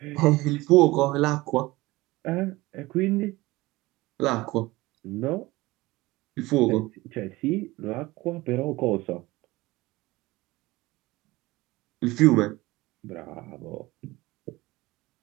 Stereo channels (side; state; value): left; quieter; 20.1 dB